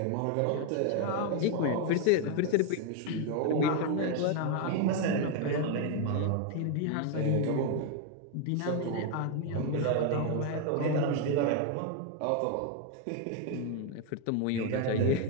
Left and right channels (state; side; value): different; both; correlation 0.01